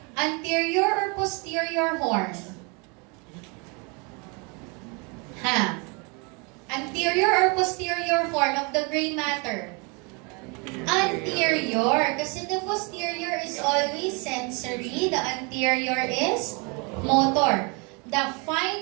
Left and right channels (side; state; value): left; quieter; 31.5 dB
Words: anterior or posterior horn. Anterior or posterior horn of the gray matter? Anterior. Kasi the posterior is always sensory. The anterior is motor. The